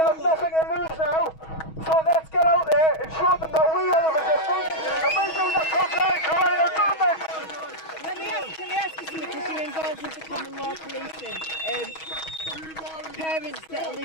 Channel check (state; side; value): late; right; 6.3 ms